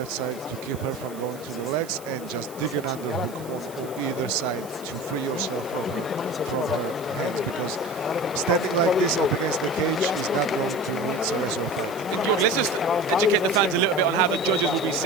side to keep her from going to the legs, and just dig an underhook on either side to free yourself from her hands, because standing like this up against the cage is not going to win Cerezo a fight. And Georg, let's just educate the fans a little bit on how the judges will be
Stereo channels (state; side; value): noise; right; hiss, 19 dB below the sound